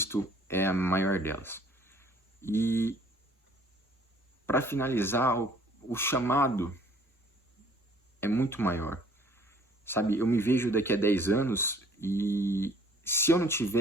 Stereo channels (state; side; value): normal; both; correlation 0.57